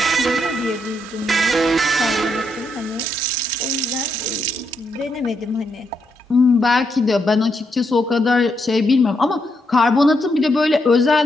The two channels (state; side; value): normal; both; correlation 0.79